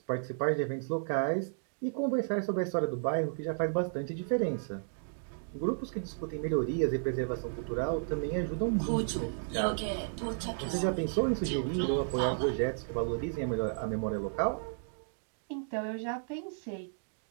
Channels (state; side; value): silent; left; digital silence